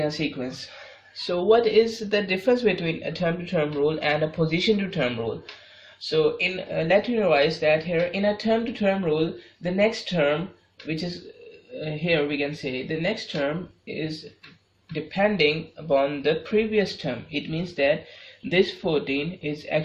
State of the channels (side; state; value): both; identical; correlation 1.00